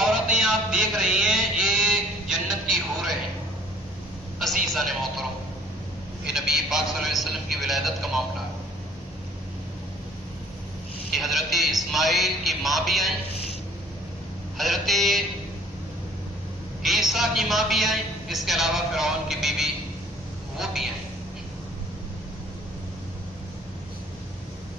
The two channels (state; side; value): normal; both; correlation 0.55